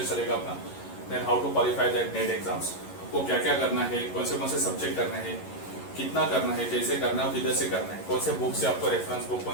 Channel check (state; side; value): late; right; 11 ms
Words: चलेगा अपना. Then how to qualify that NET exams. आपको क्या क्या करना है, कौन से सब्जेक्ट करना है, कितना करना है, कैसे करना है, किधर से करना है, कौन से बुक से आपको रेफरेंस बुक